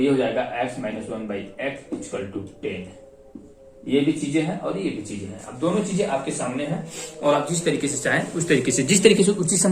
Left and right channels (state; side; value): identical; both; correlation 1.00